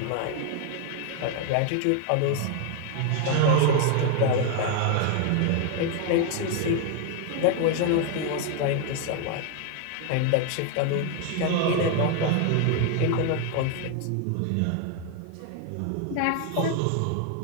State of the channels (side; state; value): both; different; correlation 0.01